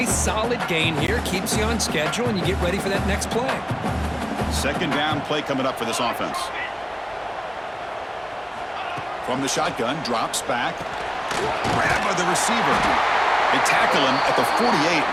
solid gain here. Keeps you on schedule, and you get ready for that next play. Second down play coming up for this offense. From the shotgun, drops back. Grab by the receiver. They tackle him at the 48,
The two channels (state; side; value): identical; both; correlation 1.00